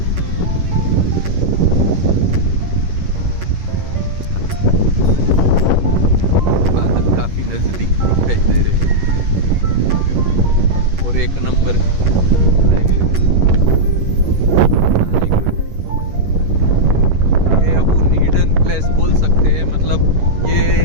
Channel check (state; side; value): late; left; 11 ms